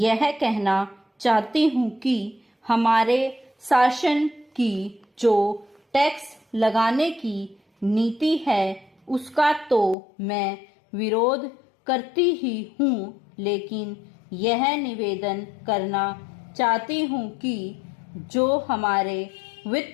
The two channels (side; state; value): right; drops out; at 10.0 s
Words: कहना चाहती हूँ कि हमारे शासन की जो टैक्स लगाने की नीति है उसका तो मैं विरोध करती ही हूँ, लेकिन यह निवेदन करना चाहती हूँ कि जो हमारे